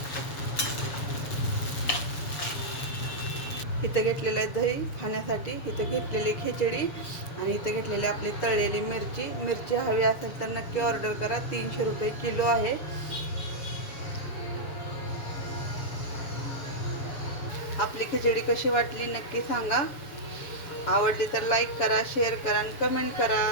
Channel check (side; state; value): right; late; 7.1 ms